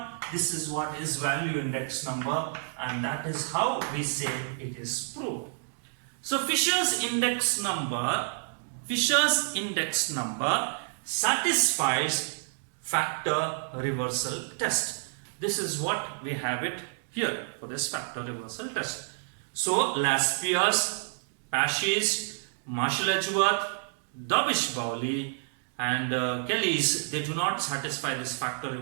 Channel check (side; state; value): left; silent; digital silence